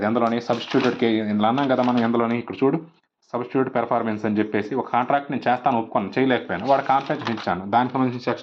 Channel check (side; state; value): both; identical; correlation 1.00